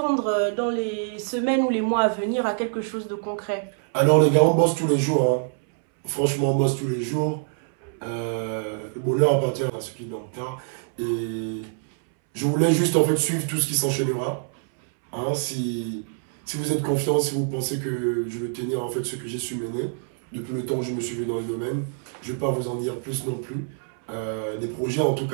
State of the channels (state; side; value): silent; left; 62 dB below the other